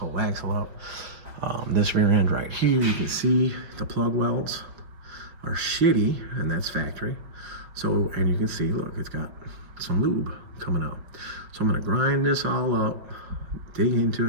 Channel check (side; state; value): left; late; 5.3 ms